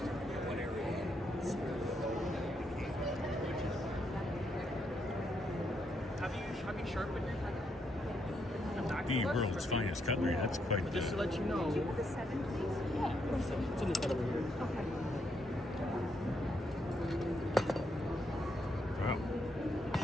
Have you sharpened your The world's finest cutlery. That's quite Just to let you know. Do you have a 7, please? Yeah, it's in the side over here. Okay. wow.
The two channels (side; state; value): both; normal; correlation 0.78